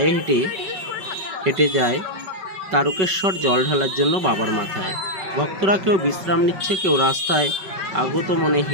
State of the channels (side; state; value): left; late; 5.3 ms